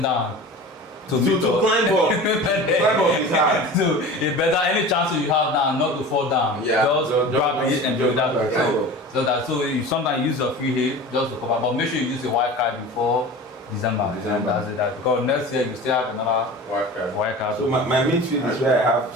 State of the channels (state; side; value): normal; both; correlation 0.36